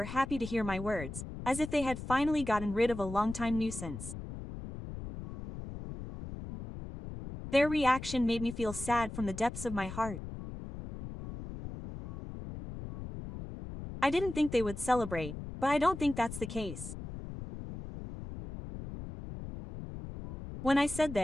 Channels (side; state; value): left; noise; rumble, 10 dB below the sound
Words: happy to hear my words, as if they had finally gotten rid of a long-time nuisance. Their reaction made me feel sad from the depths of my heart. I didn't think they would celebrate, but I don't think that's the case. When I said